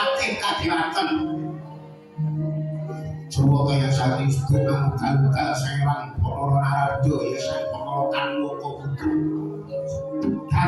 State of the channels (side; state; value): both; identical; correlation 1.00